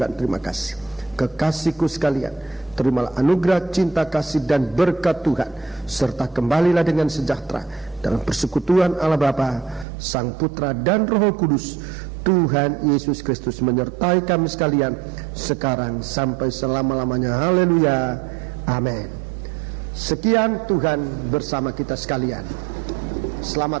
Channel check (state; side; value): drops out; left; at 9.9 s